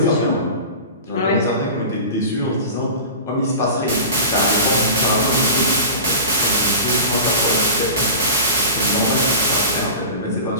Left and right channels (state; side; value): inverted; both; correlation -0.32